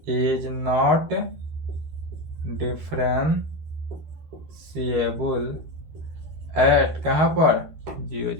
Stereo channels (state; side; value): late; left; 13 ms